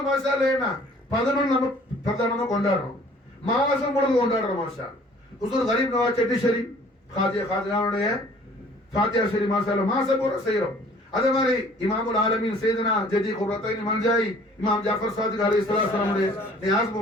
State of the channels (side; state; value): both; normal; correlation 0.54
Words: மாஷாஅல்லாஹ் என்ன 11 நம்ம பிரதானமா கொண்டாடுறோம், மாசம் முழுக்க கொண்டாடுறோம் மாஷாஅல்லாஹ். ஹுசூர் கரீம் நவாஸ் செட்டி ஷரீப் காதியாவுடைய ஃபாத்திஹா ஷரீப் மாஷாஅல்லாஹ் மாசம் பூரா செய்றோம். அதே மாதிரி இமாமுல் ஆலமீன் சையதுனா ஜதி குர்ரத்தைன் மன்ஜாய் இமாம் ஜாஃபர் சாதிக் அலைஹிஸ்ஸலாம் உடைய நியாஸ்